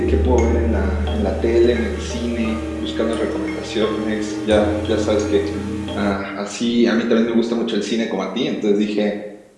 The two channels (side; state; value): both; identical; correlation 1.00